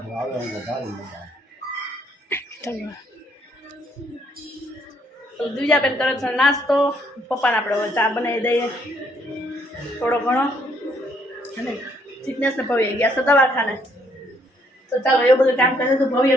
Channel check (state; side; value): normal; both; correlation 0.69